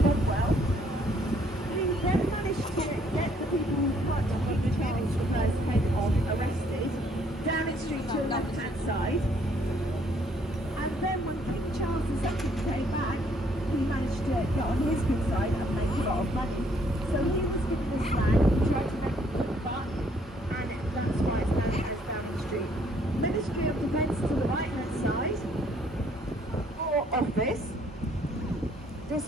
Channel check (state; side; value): normal; both; correlation 0.65